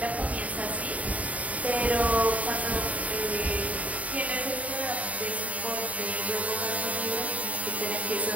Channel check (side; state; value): left; late; 0.069 ms